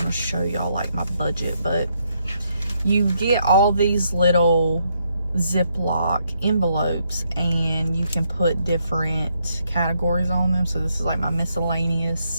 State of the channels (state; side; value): inverted; both; correlation -0.76